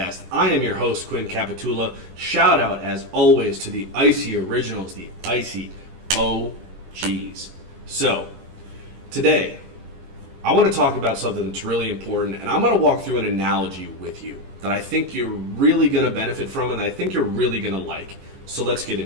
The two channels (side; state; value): left; late; 22 ms